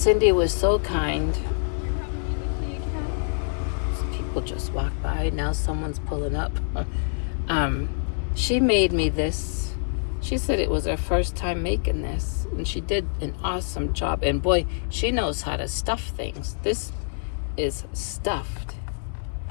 was so kind. People just walk by. Now someone's pulling up. She made me this. She said it was her first time making this, and she did an awesome job. And boy, she knows how to stuff things. This is stuffed.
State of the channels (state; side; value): silent; right; digital silence